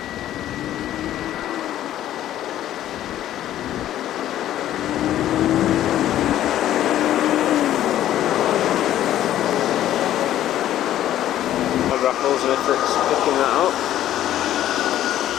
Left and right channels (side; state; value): right; quieter; 12.4 dB